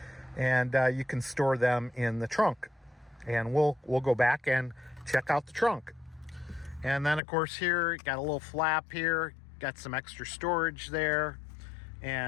and you can store them in the trunk. And we'll go back and check out the trunk. And then of course here, got a little flap here, got some extra storage there,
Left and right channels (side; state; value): right; drops out; at 7.2 s